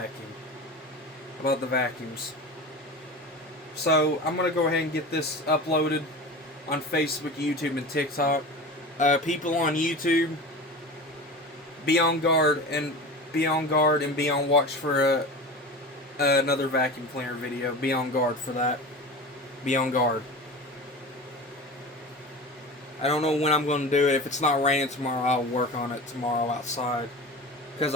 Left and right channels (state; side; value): normal; both; correlation 0.31